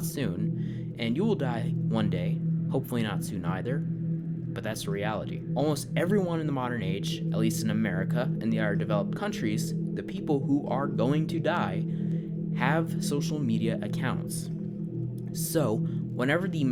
soon, and you will die one day, hopefully not soon either, but that's the reality. Almost everyone in the modern age, at least in America and the other developed countries, the people who are going to die have social media accounts. So, whenever the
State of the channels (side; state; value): both; identical; correlation 1.00